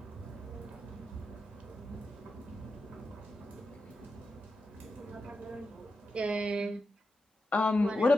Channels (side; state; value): both; normal; correlation 0.89